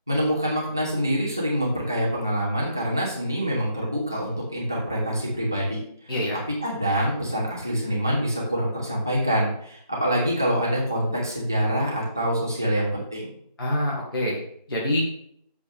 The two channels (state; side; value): inverted; both; correlation -0.73